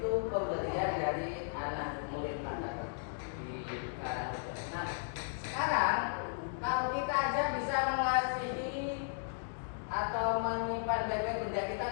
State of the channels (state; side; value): silent; right; digital silence